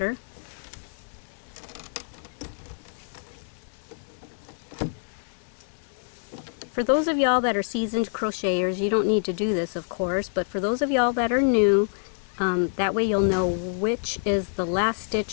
For those of y'all that are seasoned crocheters, you don't need to do this, of course, but for those of y'all that are new, that way you'll know which is the last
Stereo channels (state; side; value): silent; right; digital silence